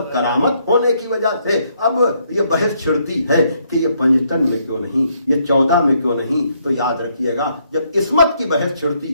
کرامت ہونے کی وجہ سے اب یہ بحث چھڑتی ہے کہ یہ 55 میں کیوں نہیں، یہ 14 میں کیوں نہیں. تو یاد رکھیے گا جب عصمت کی بحث چھڑتی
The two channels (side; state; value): both; inverted; correlation -0.72